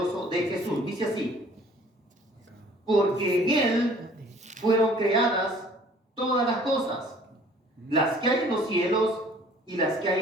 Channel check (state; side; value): normal; both; correlation 0.53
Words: de Jesús. Dice así: porque en Él fueron creadas todas las cosas, las que hay en los cielos y las que hay